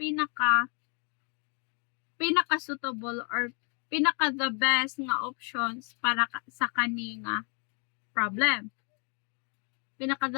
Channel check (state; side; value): quieter; right; 37.4 dB